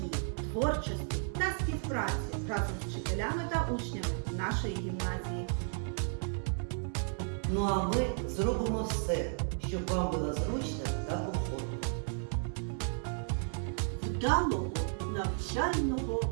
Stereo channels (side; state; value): left; silent; 55 dB below the other